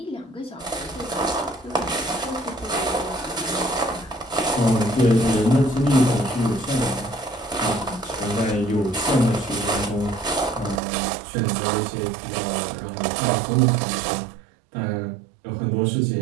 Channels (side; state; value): left; drops out; at 10.8 s